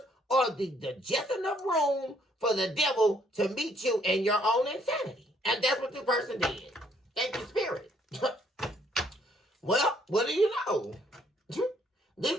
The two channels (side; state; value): both; normal; correlation 0.67